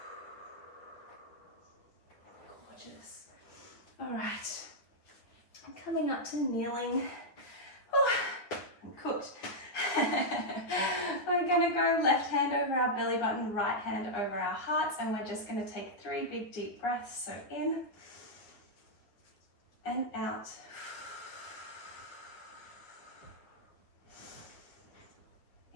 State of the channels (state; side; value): late; right; 9.6 ms